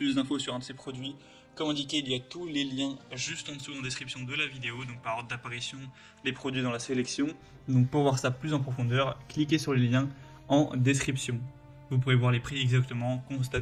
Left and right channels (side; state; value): both; identical; correlation 1.00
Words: d'infos sur un de ces produits, comme indiqué, il y a tous les liens juste en dessous en description de la vidéo, donc par ordre d'apparition, les produits dans la sélection. Donc pour voir ça plus en profondeur, cliquez sur les liens en description. Vous pourrez voir les prix exactement,